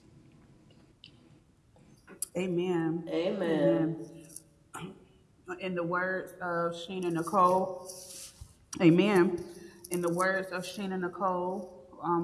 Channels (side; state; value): both; identical; correlation 1.00